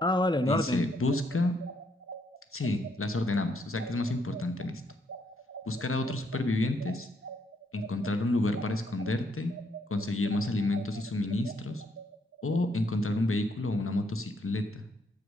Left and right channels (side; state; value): both; normal; correlation 0.73